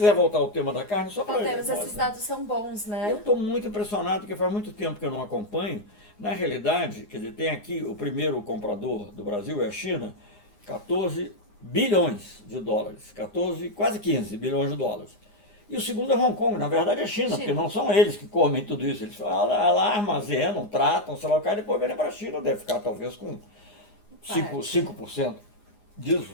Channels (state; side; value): late; right; 9.7 ms